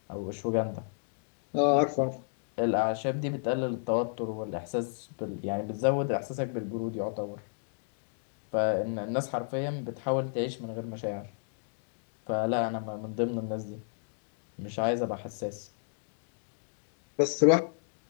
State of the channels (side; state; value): right; silent; digital silence